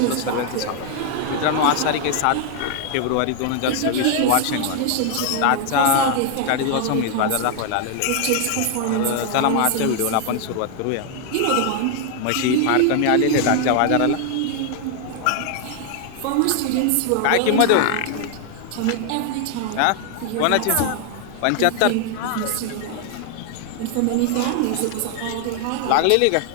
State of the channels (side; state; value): both; different; correlation 0.00